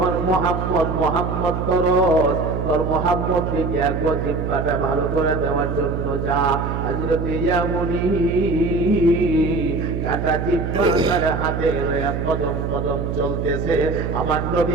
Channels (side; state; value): right; noise; hum, 3 dB below the sound